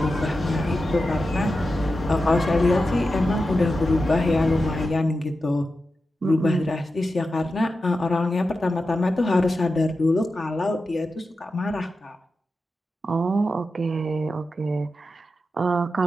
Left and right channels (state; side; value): normal; both; correlation 0.91